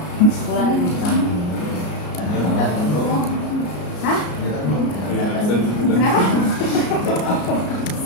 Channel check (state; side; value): late; right; 34 ms